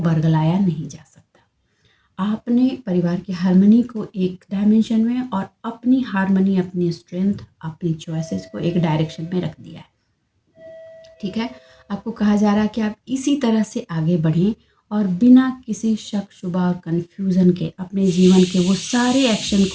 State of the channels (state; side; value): identical; both; correlation 1.00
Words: नहीं जा सकता। आपने परिवार की हारमनी को एक डायमेंशन में और अपनी हारमनी, अपनी स्ट्रेंथ, अपनी चॉइसेस को एक डायरेक्शन में रख दिया है, ठीक है। आपको कहा जा रहा है कि आप इसी तरह से आगे बढ़ें और बिना किसी शक शुबा और कन्फ्यूज़न के अपने जीवन के वो सारे एक्शन